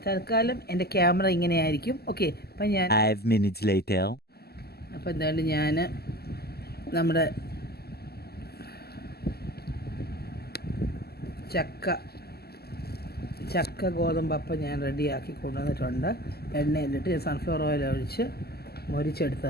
തൽക്കാലം എൻ്റെ ക്യാമറ ഇങ്ങനെയായിരിക്കും. ഓക്കെ, അപ്പം ഞാൻ 5 minutes later. അപ്പം എന്തായാലും ഞാൻ നമ്മുടെ ചക്ക ഗോതമ്പപ്പം ഞാൻ റെഡിയാക്കി കൊണ്ടുവന്നിട്ടുണ്ട്. എണ്ണയിലിട്ട് ഞാൻ സൺഫ്ലവർ ഓയിൽ ഒഴിച്ച്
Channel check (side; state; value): right; late; 0.46 ms